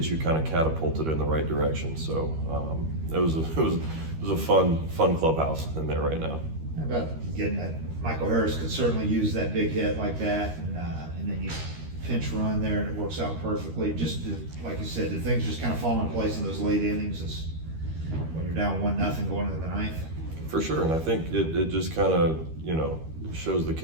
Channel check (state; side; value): late; left; 13 ms